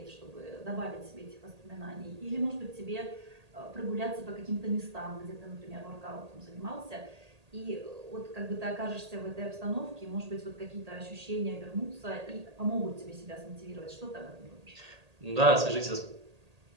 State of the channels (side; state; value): left; late; 1.8 ms